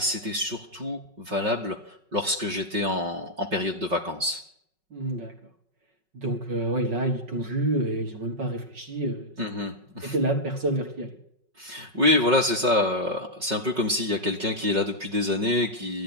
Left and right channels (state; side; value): late; left; 5.4 ms